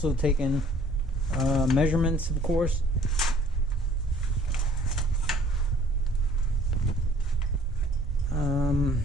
taken measurements, of course.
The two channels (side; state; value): both; normal; correlation 0.56